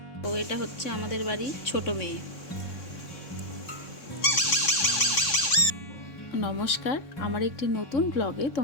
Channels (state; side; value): late; right; 3.6 ms